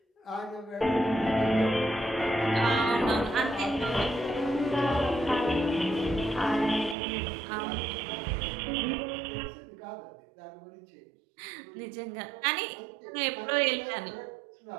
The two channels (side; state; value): left; drops out; at 7.0 s